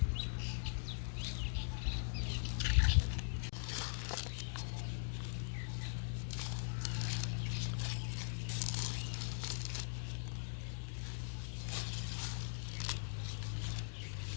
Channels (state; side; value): silent; right; digital silence